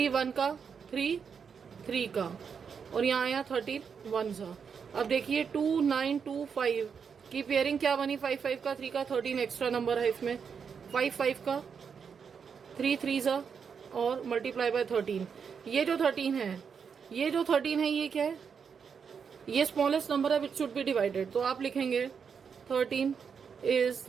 1 का 3 3 का और यहाँ आया 31 सा. अब देखिए 2925 की पेयरिंग क्या बनी, 5 5 का 3 का 13 एक्स्ट्रा नंबर है इसमें. 5 5 का 3 3 सा और मल्टीप्लाई बाय 13. ये जो 13 है, ये क्या है, ये स्मॉलेस्ट नंबर है विच शुड बी डिवाइडेड. तो आप लिखेंगे 13 is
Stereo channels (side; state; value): left; quieter; 6.5 dB